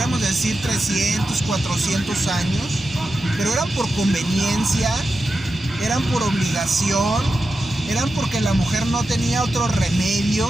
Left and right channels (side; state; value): both; normal; correlation 0.90